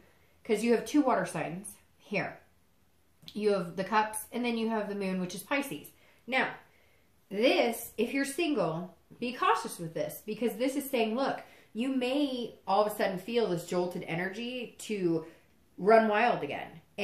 because you have 2 water signs here. You have the Cups, and then you have the Moon, which is Pisces. Now, this, if you're single, be cautious with this because this is saying, look, you may all of a sudden feel this jolted energy to run wild again.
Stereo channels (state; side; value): identical; both; correlation 1.00